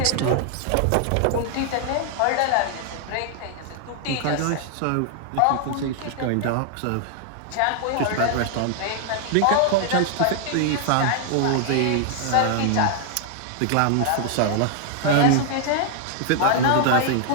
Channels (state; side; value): different; both; correlation 0.00